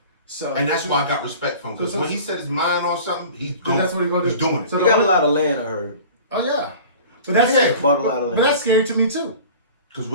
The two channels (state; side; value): inverted; both; correlation -0.42